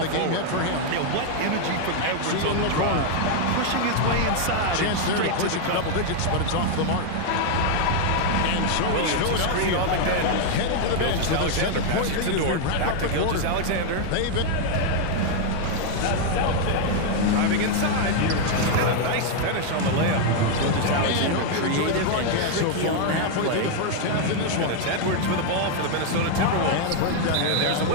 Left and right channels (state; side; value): different; both; correlation 0.00